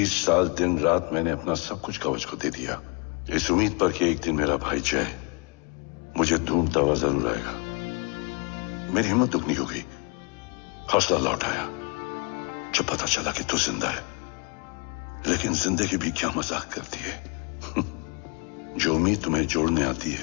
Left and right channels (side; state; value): right; quieter; 33.4 dB